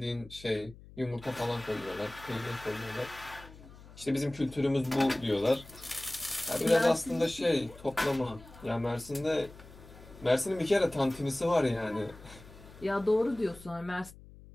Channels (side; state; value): left; noise; hum, 19 dB below the sound